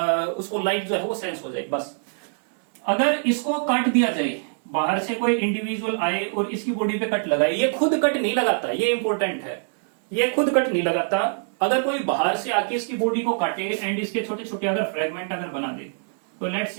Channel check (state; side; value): silent; left; digital silence